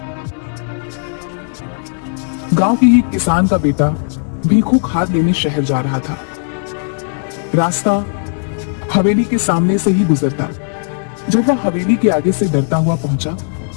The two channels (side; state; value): right; silent; 69 dB below the other